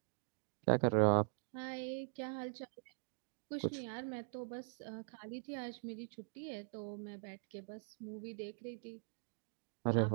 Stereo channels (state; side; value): silent; left; digital silence